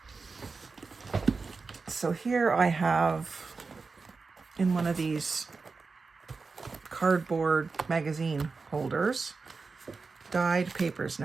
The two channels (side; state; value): left; quieter; 4.4 dB